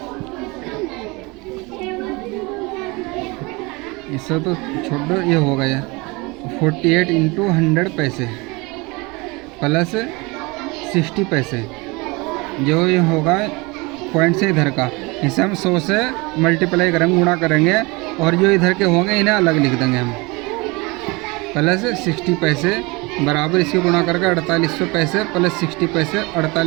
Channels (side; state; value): left; quieter; 25.7 dB